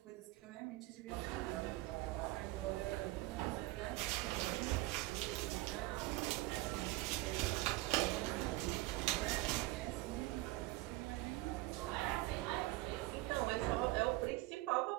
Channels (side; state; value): left; quieter; 19.6 dB